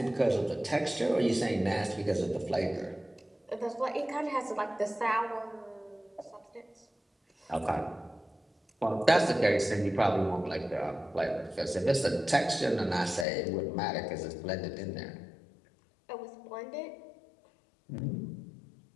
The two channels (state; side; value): drops out; right; at 13.2 s